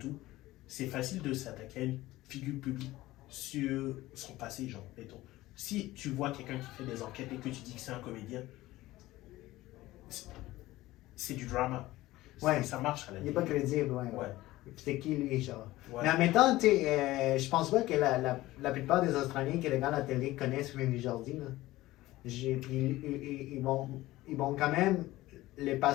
c'est facile de s'attaquer à une figure publique sur son passé, genre. Si tu vois quelqu'un qui fait des enquêtes et que tu dis que c'est un comédien, c'est du drama. Ça marche à la vie. Il n'est pas crédible, ouais. C'est qui lui, genre. Mais en même temps, je pense pas que la plupart des Australiens qui regardent la télé connaissent Friendly Jordi. Ils vont quand même les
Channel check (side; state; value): right; quieter; 17.4 dB